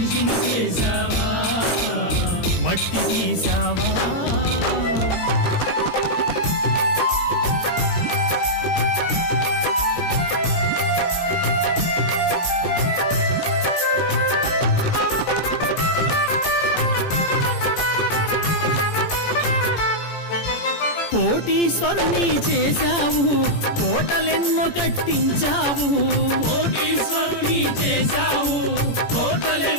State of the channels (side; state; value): right; late; 17 ms